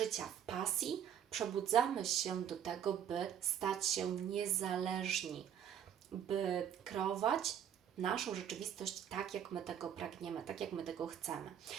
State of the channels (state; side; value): quieter; left; 9.3 dB